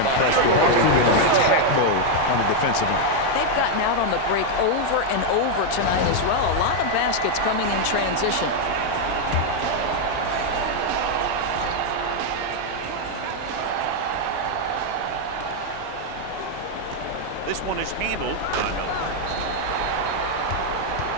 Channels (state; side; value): different; both; correlation 0.01